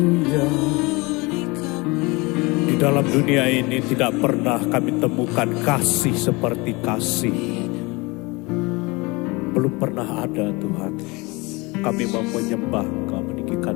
Di dalam dunia ini tidak pernah kami temukan kasih seperti kasih. Belum pernah ada Tuhan. Kami mau menyembah Engkau,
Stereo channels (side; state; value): right; quieter; 25.2 dB